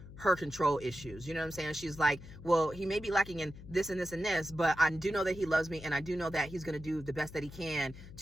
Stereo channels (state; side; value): noise; left; hum, 15 dB below the sound